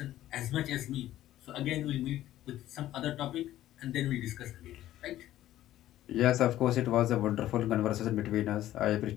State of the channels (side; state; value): right; quieter; 13.7 dB